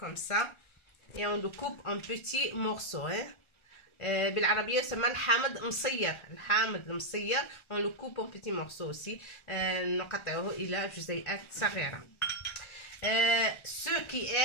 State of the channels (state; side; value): late; right; 1.3 ms